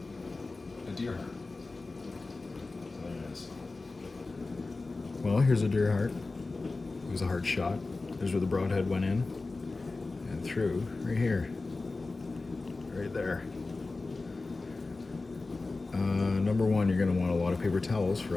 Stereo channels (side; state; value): right; quieter; 3.5 dB